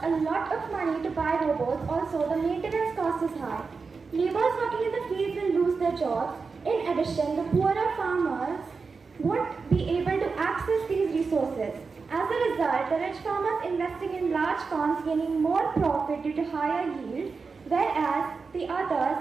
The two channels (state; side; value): quieter; left; 4.7 dB